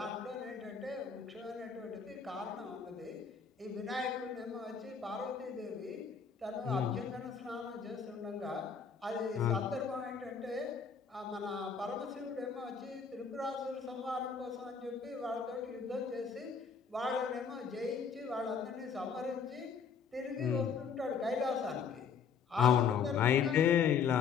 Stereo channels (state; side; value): quieter; right; 6.3 dB